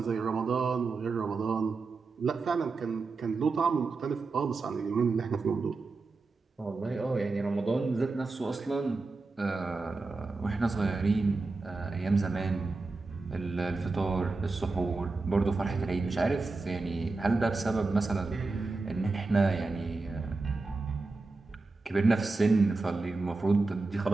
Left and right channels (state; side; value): quieter; left; 3.7 dB